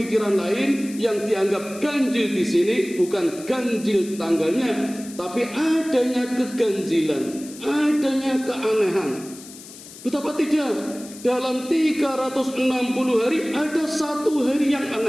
lain yang dianggap ganjil di sini bukan ganjil tanggalnya, tapi adanya keganjilan, adanya keanehan. Betapa tidak, dalam 360 hari ada 1 hari yang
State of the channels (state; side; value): noise; left; hiss, 17 dB below the sound